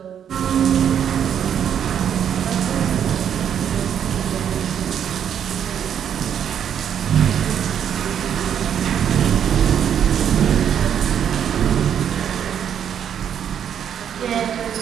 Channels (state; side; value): quieter; left; 8.9 dB